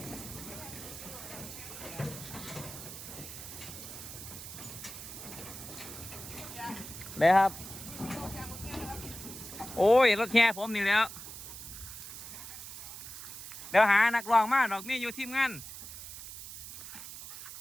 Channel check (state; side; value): noise; right; hiss, 11 dB below the sound